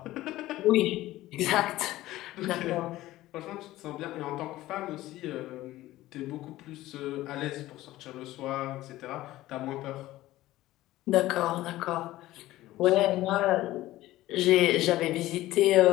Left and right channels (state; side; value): quieter; right; 16.2 dB